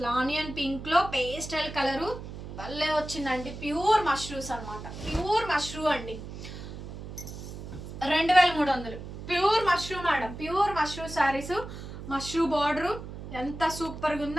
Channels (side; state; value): right; noise; hum, 10 dB below the sound